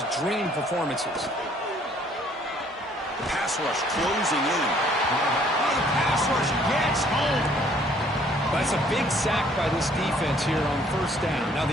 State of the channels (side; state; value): both; normal; correlation 0.61